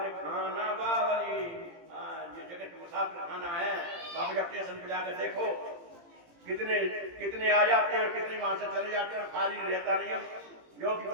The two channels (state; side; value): late; left; 17 ms